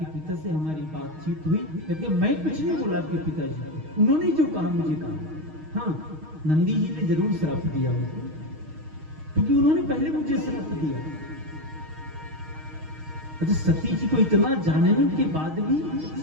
पिता से हमारी बातचीत हुई। कहते मैं कुछ नहीं बोला आपके पिताजी को, उन्होंने जो कहा मुझे कहा। हाँ नंदी जी ने जरूर श्राप दिया उनको, क्योंकि उन्होंने पहले मुझे श्राप दिया। अच्छा सती जी को इतना जानने के बाद भी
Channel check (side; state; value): left; late; 6.4 ms